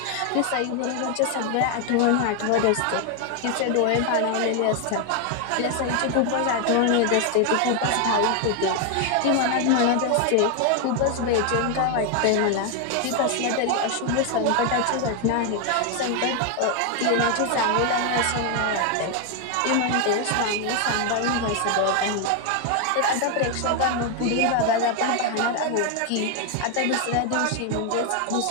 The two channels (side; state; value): both; different; correlation 0.01